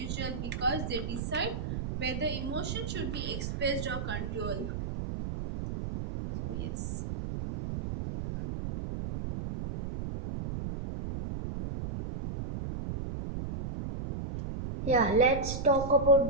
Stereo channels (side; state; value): right; noise; rumble, 5 dB below the sound